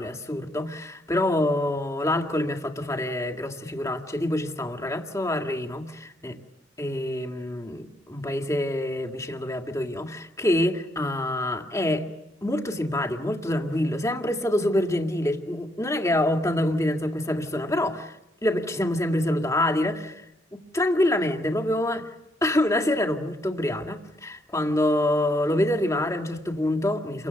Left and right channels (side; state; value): both; normal; correlation 0.73